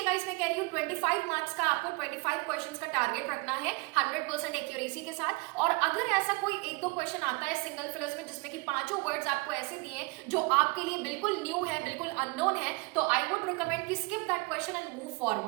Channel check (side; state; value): left; quieter; 26.3 dB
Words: गाइस मैं कह रही हूँ 25 मार्क्स का आपको 25 क्वेश्चन का टारगेट रखना है 100% एक्यूरेसी के साथ। और अगर ऐसा कोई 1-2 क्वेश्चन आता है सिंगल फिलर्स में जिसमें कि 5 वर्ड्स आपको ऐसे दिए जो आपके लिए बिल्कुल न्यू है, बिल्कुल अननोन है, तो आई वुड रिकमेंड कि skip that question and move